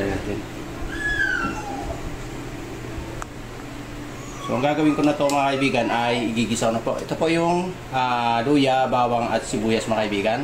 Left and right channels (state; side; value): identical; both; correlation 1.00